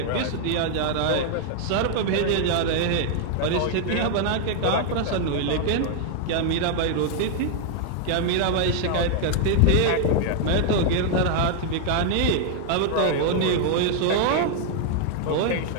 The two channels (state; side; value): different; both; correlation 0.00